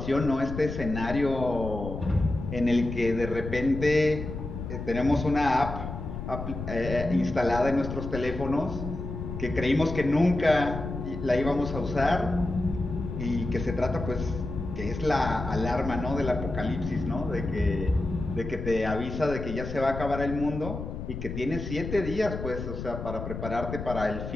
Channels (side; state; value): left; noise; rumble, 7 dB below the sound